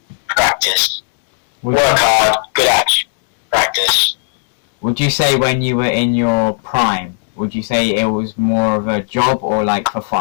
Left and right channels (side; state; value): right; silent; 69 dB below the other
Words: practice. Work hard, good attitude, practice. Would you say when you were in your prime, would you say it was more of a job or like for